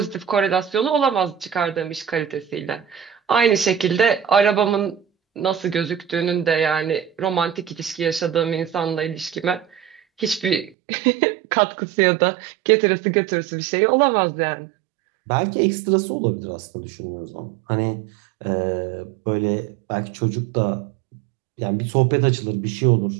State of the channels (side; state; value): left; drops out; at 10.7 s